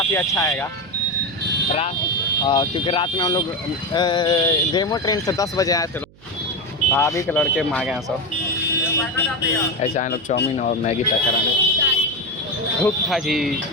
अच्छा आएगा रात, क्योंकि रात में हम लोग डेमो ट्रेन से 10 बजे आए थे। भाभी के लड़के मांगे हैं सब, ऐसे आए लोग चाउमीन और मैगी पैक कराने। भूख था जी।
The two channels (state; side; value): noise; right; hum, 26 dB below the sound